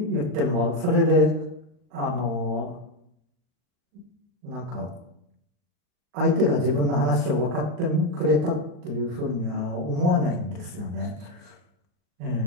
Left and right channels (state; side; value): late; left; 39 ms